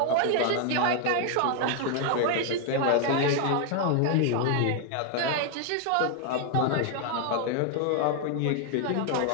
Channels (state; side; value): different; both; correlation 0.00